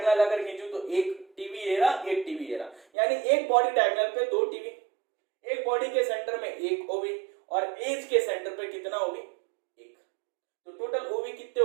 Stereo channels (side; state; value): left; drops out; at 2.8 s